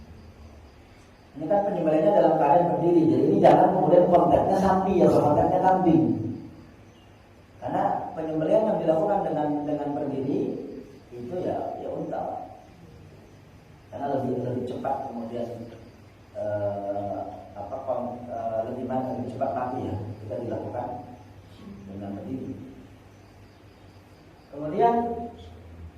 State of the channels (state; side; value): identical; both; correlation 1.00